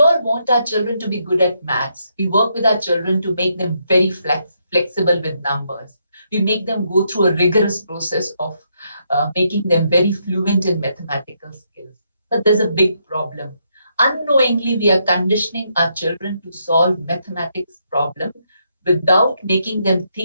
want our children to be good at maths. We work with our children to make them very flexible with numbers. We make them go through a rigorous process of making them very fluent in mathematical skills. But there's a big problem. Unknowingly, we are conditioning our children to solve mathematics problem without making them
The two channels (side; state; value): both; inverted; correlation -0.77